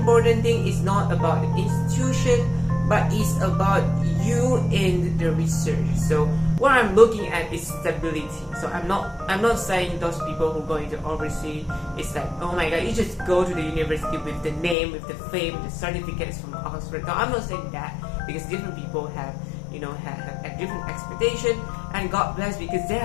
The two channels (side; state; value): right; drops out; at 14.8 s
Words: thing is not about the institution, but it's about you in the research. So what I'm looking at is stability. So I'm not saying those people who go into overseas, it's like, oh my god, you just go to the university with the name, with the fame, the certificates from Oxford. No, I'm not saying that, because different people have have a different expectation, and God bless, because they